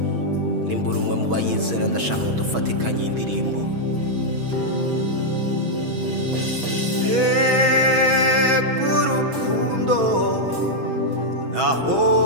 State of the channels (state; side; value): late; left; 6.2 ms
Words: Nimbura umwe mu bayizera ndashaka ngo dufatikanye indirimbo